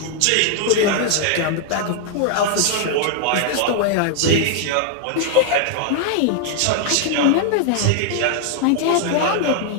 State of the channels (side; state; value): both; different; correlation 0.00